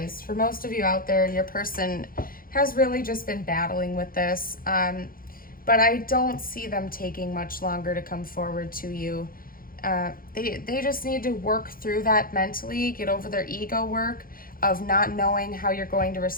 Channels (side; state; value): right; late; 0.42 ms